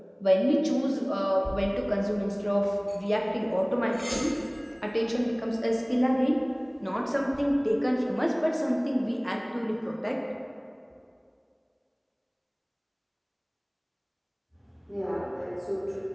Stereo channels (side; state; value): both; identical; correlation 1.00